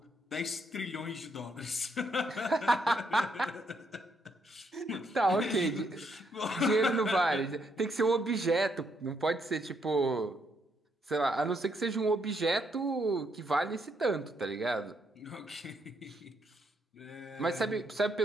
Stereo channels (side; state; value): both; normal; correlation 0.75